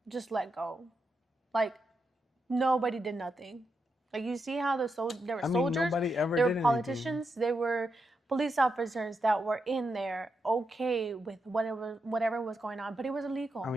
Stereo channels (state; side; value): normal; both; correlation 0.85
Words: just let go. Like, nobody did nothing. Like, you see how there were soldiers, nobody ever there did were politicians, anything. there were police officers that were in there okay with whatever was going on, but it was illegal.